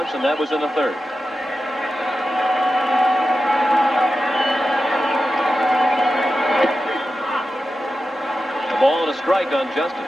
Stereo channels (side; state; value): both; normal; correlation 0.91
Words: and that was in the 3rd. A ball and a strike on Justice.